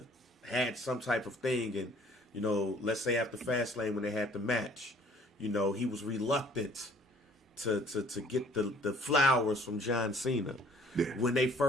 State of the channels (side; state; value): both; normal; correlation 0.55